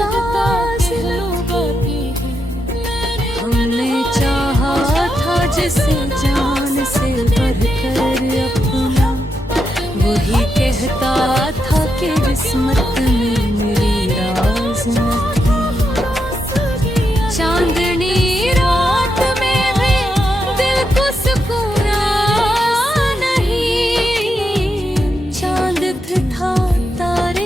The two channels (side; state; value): both; normal; correlation 0.84